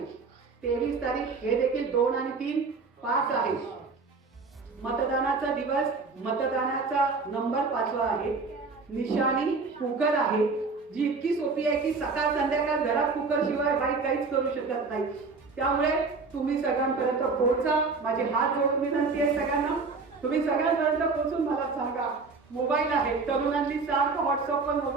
23 तारीख हे देखील 2 आणि 3 5 आहे. मतदानाचा दिवस, मतदानाचा नंबर 5वा आहे. निशाणी कुकर आहे, जी इतकी सोपी आहे की सकाळ संध्याकाळ घरात कुकर शिवाय बाई काहीच करू शकत नाही. त्यामुळे तुम्ही सगळ्यांपर्यंत पोहोचा. माझे हात जोडून विनंती आहे सगळ्यांना, तुम्ही सगळ्यांपर्यंत पोहोचून मला सांगा. मोबाईल आहे, तरुणांनी सारखं व्हॉट्सअपवर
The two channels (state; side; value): quieter; left; 4.3 dB